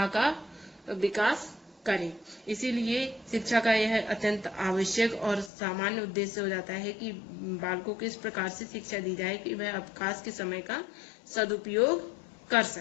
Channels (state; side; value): drops out; right; at 5.5 s